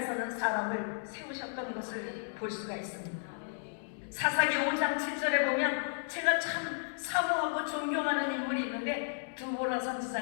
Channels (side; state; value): right; silent; digital silence